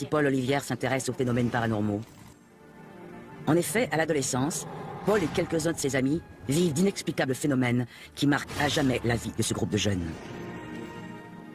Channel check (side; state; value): both; identical; correlation 1.00